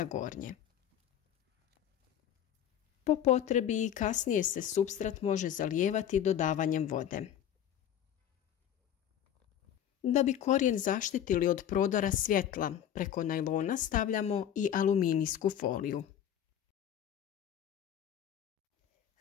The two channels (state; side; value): quieter; right; 10.1 dB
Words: gornje. Po potrebi i kasnije se supstrat može zalijevati dodavanjem vode. Da bi korijen zaštitili od prodora svjetla, preko najlona stavljamo i aluminijsku foliju.